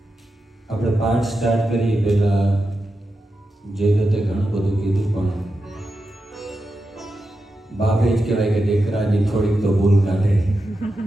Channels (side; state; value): both; normal; correlation 0.89